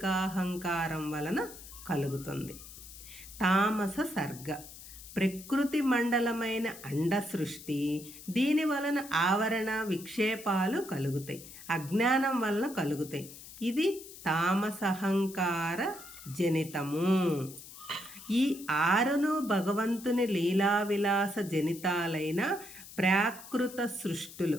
వలన కలుగుతుంది. తామస సర్గ. ప్రకృతి మండలమైన అండ సృష్టి. దీని వలన ఆవరణ విక్షేపాలు కలుగుతాయి, అజ్ఞానం వలన కలుగుతాయి. ఇది తామసహంకార జనితము. ఈ 6ను భగవంతుని లీలావిలాస జనితాలైన ప్రాకృత సృష్టులు.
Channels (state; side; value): noise; left; hiss, 16 dB below the sound